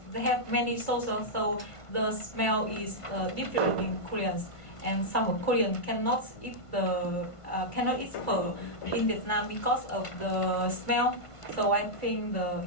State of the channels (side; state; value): right; late; 1.5 ms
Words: they have many sauces, so the smell is different in Korean. And some Korean cannot eat pho in Vietnam because of the smell. So I think